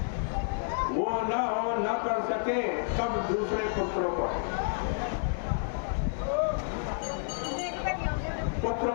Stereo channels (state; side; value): silent; right; 58 dB below the other